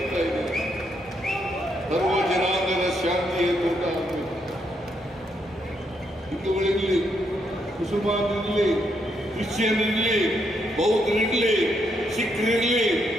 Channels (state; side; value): normal; both; correlation 0.77